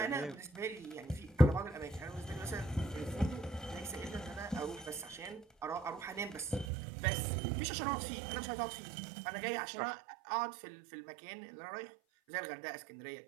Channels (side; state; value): left; drops out; at 6.7 s